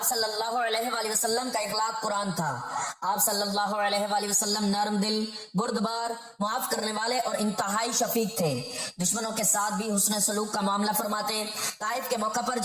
صلی اللہ علیہ وآلہ وسلم کا اخلاق قرآن تھا۔ آپ صلی اللہ علیہ وآلہ وسلم نرم دل، بردبار، معاف کرنے والے اور انتہائی شفیق تھے۔ دشمنوں کے ساتھ بھی حسن سلوک کا معاملہ فرماتے۔ طائف کے موقع پر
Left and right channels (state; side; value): identical; both; correlation 1.00